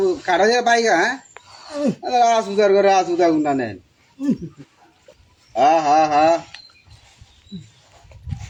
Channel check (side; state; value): both; identical; correlation 1.00